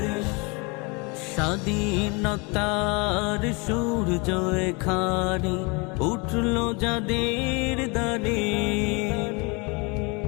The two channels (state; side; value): quieter; right; 29.6 dB